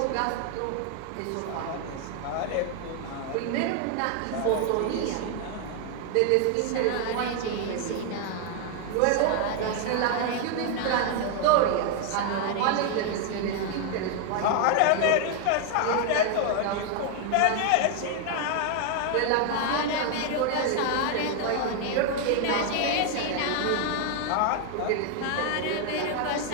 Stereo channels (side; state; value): both; different; correlation 0.00